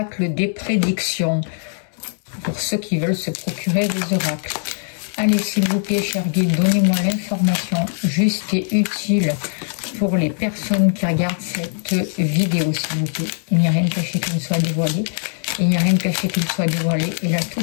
des prédictions pour ceux qui veulent se procurer des oracles. Allez, s'il vous plaît, cher guide, donnez-moi l'information juste et utile pour les personnes qui regardent cette vidéo, s'il vous plaît. Il n'y a rien de caché qui ne soit dévoilé. Il n'y a rien de caché qui ne soit dévoilé. Et la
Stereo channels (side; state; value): right; silent; 65 dB below the other